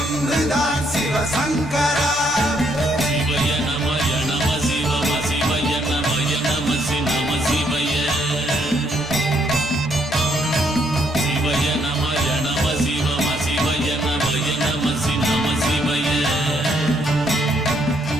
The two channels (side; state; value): both; normal; correlation 0.71